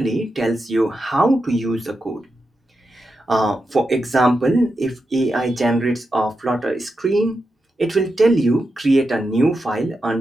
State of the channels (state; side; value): normal; both; correlation 0.88